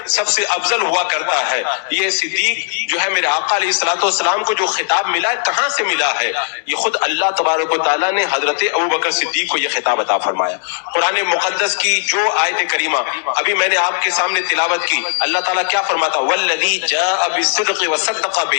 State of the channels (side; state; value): right; silent; 66 dB below the other